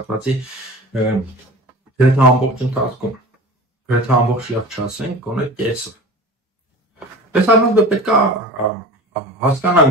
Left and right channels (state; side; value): normal; both; correlation 0.36